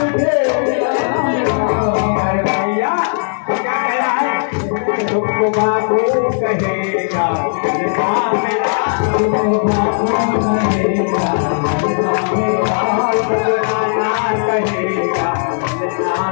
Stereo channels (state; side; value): silent; right; digital silence